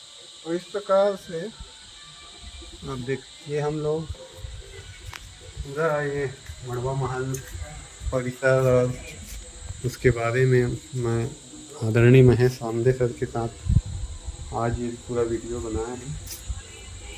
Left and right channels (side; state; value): both; identical; correlation 1.00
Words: तो इस प्रकार से अब देखिए हम लोग पूरा ये मड़वा महल परिसर और उसके बारे में मैं आदरणीय महेश आमदे सर के साथ आज ये पूरा वीडियो बनाया